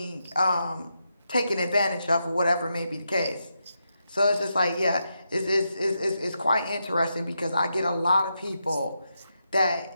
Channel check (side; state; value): both; inverted; correlation -0.85